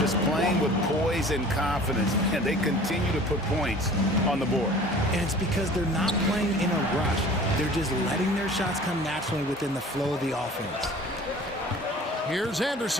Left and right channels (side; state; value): both; normal; correlation 0.45